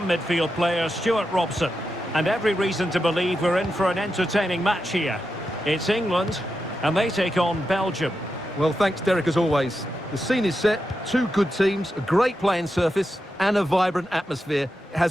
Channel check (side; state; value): both; normal; correlation 0.88